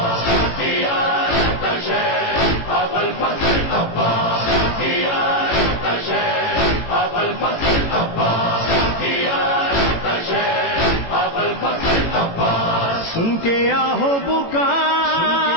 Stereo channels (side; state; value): right; late; 18 ms